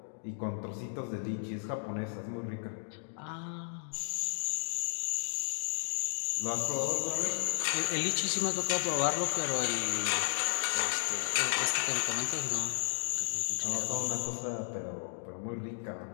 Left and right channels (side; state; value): right; silent; digital silence